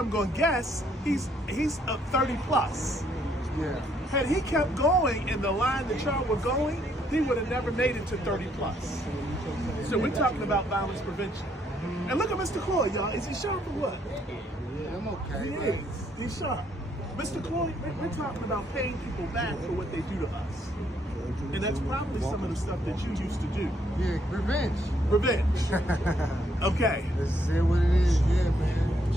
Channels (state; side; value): normal; both; correlation 0.70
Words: gonna guess he's 30 plus. Yeah. Had he kept going in the line that y'all were going, he would have never made it to 30 plus. So we're talking about violence prevention. And look at Mr. Cloyd, y'all. Is he sharp or what? Yeah, I'm okay. He man. is. He's sharp. Mr. Cloyd, we're talking about paying people back for what they do to us. And that's probably some of the stuff that you used to do. Yeah, revenge. Revenge. Okay. This is what it is. Yeah, man.